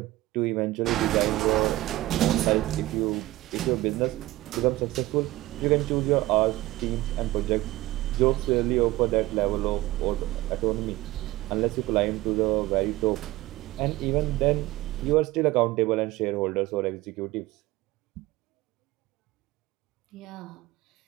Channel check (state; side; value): quieter; left; 17.9 dB